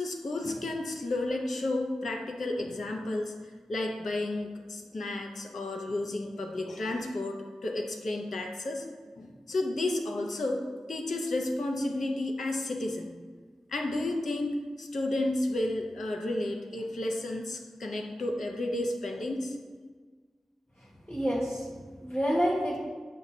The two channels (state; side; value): normal; both; correlation 0.91